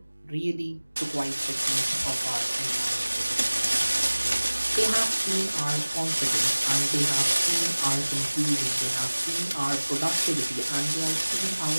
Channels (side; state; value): both; inverted; correlation -1.00